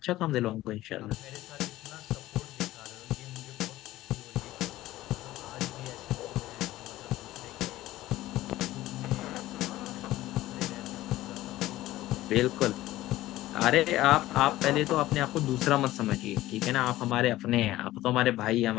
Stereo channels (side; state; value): right; quieter; 16.1 dB